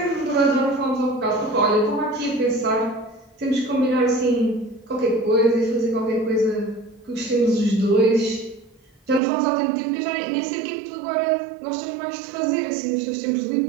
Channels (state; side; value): drops out; left; at 9.2 s